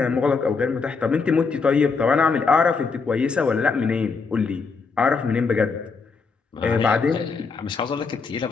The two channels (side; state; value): right; quieter; 4.8 dB